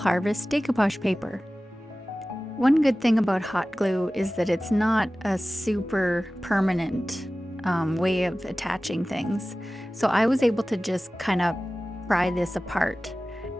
decoupage paper. One good thing about hot glue is that it's not a super permanent way of attaching things. So I was able to just kind of pry this apart.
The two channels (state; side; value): normal; both; correlation 0.97